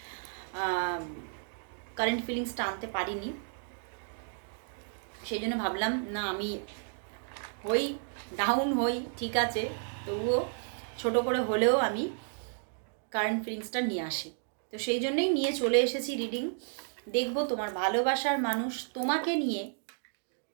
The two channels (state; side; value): silent; left; 56 dB below the other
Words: কারেন্ট ফিলিংসটা আনতে পারিনি, সেই জন্য ভাবলাম না আমি ডাউন হই ঠিক আছে, তবুও ছোট করে হলেও আমি কারেন্ট ফিলিংসটা নিয়ে আসি। তো সেই জন্যই নিয়ে চলে এসেছি রিডিং। দেখব তোমার ভালোবাসার মানুষ তোমাকে নিয়ে